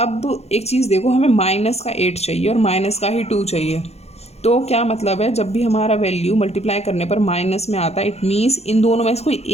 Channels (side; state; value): right; late; 0.31 ms